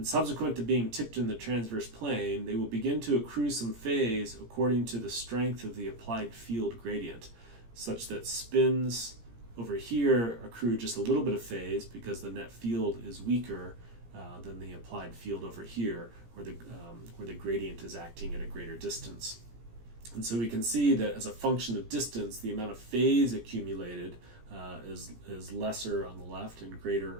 subsequent to being tipped in the transverse plane, they will begin to accrue some phase according to the strength of the applied field gradient, such that spins over here accrue just a little bit of phase because the net field is weaker than the applied field over here, where the gradient is acting at a greater distance. And so we can see that as a function of distance, the amount of phase accumulated is lesser on the left and greater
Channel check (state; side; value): late; left; 17 ms